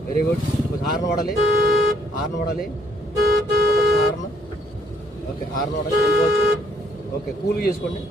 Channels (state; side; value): normal; both; correlation 0.67